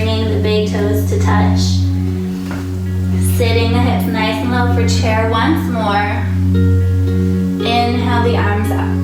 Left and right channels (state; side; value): identical; both; correlation 1.00